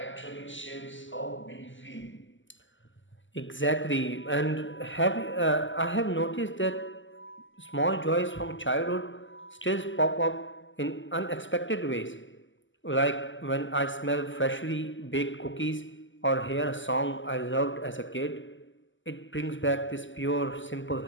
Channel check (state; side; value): late; right; 0.55 ms